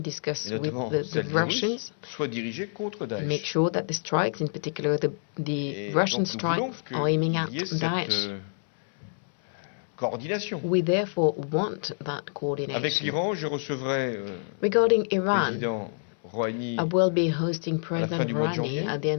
et with notamment the celles des Russes, Russians, soient dirigées contre make Daesh. sure that the strikes, in particular the Et Russian donc nous voulons strikes, are aiming at qu'il y ait cette Daesh. coordination. We therefore want that Avec coordination. l'Iran, je recevrai Regarding le Iran, président Rouhani I will be hosting à la fin President du mois de Rouhani janvier at the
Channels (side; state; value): right; silent; 60 dB below the other